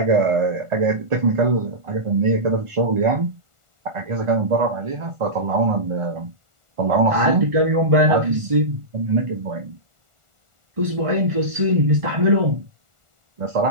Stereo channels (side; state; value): left; late; 1.4 ms